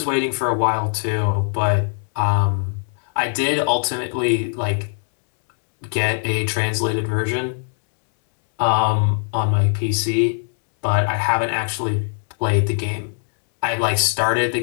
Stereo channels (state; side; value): silent; right; 65 dB below the other